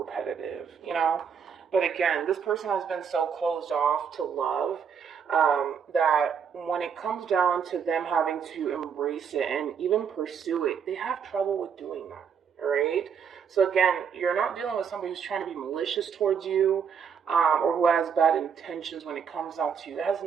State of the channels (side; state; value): left; quieter; 7.0 dB